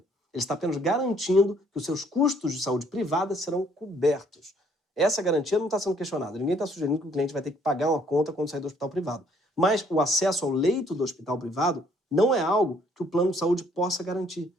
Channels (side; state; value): both; normal; correlation 0.63